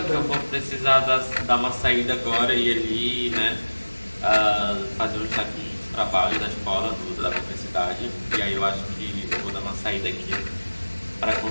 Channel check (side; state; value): both; inverted; correlation -1.00